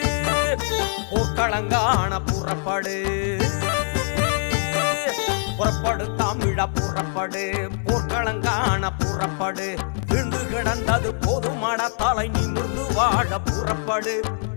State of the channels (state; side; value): silent; right; 63 dB below the other